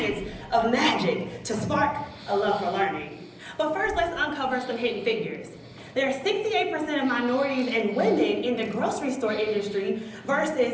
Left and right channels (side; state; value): both; identical; correlation 1.00